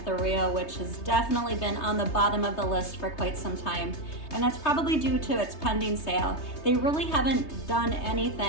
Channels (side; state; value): right; late; 3.2 ms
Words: the Rio, which has definitely been on the bottom of the list for quite some time. And that's probably due to its pending sale. They really haven't done